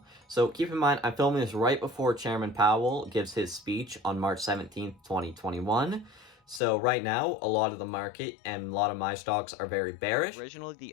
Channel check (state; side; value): drops out; right; at 6.6 s